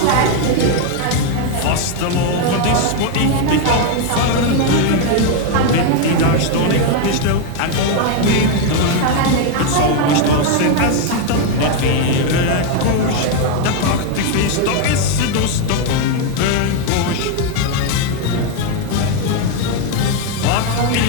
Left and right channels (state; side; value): different; both; correlation 0.01